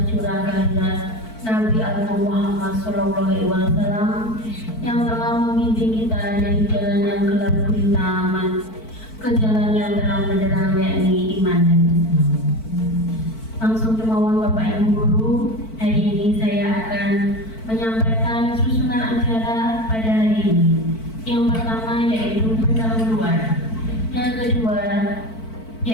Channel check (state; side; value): late; right; 4.5 ms